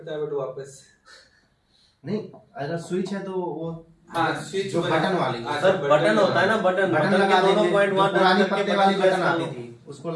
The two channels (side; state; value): both; identical; correlation 1.00